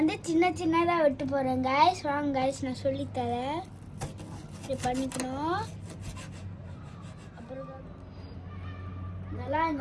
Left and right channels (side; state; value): both; identical; correlation 1.00